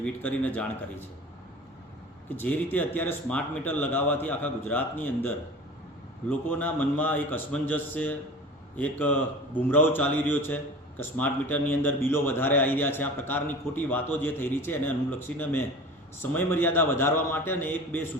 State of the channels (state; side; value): normal; both; correlation 0.38